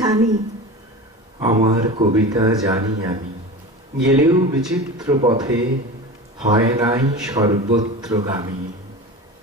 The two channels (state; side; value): normal; both; correlation 0.31